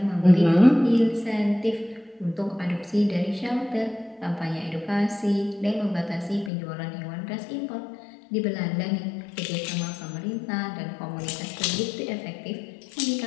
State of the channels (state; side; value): drops out; right; at 6.5 s